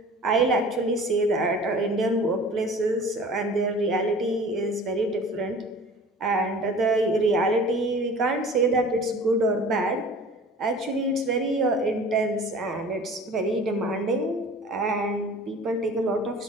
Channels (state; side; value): normal; both; correlation 0.43